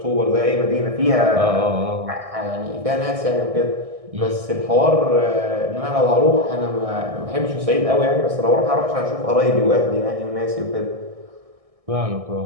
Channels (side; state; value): left; late; 1.6 ms